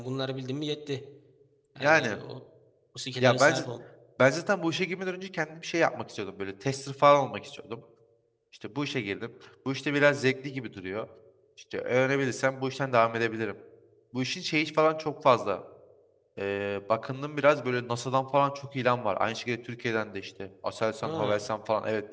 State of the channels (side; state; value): both; identical; correlation 1.00